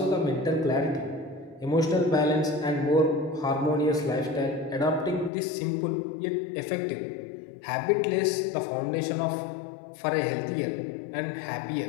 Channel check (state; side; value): drops out; right; at 5.3 s